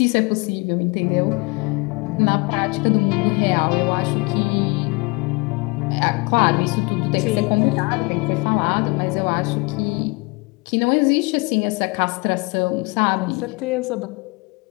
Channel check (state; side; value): quieter; right; 28.4 dB